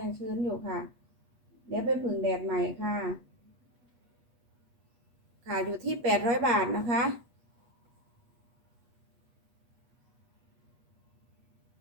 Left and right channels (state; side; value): late; left; 8.3 ms